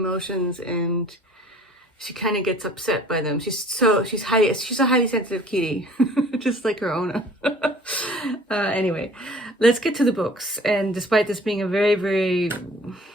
and she kind of gets upset by them. She's a highly sensitive kitty, just like her owner. Anyway, let's get to the books. And despite this being a very, very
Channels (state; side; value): normal; both; correlation 0.50